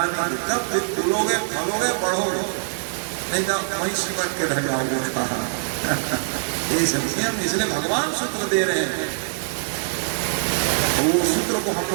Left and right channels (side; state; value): left; silent; digital silence